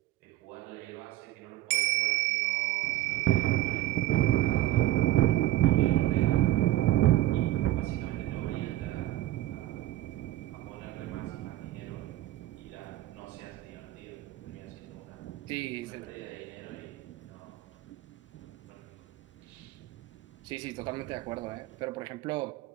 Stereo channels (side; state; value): left; quieter; 15.0 dB